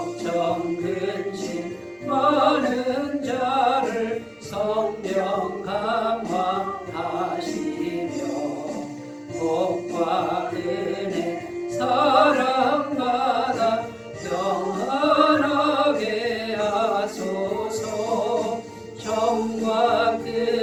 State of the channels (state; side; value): identical; both; correlation 1.00